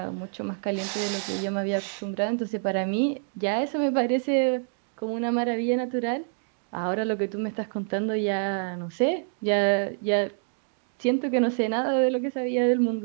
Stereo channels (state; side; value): silent; left; digital silence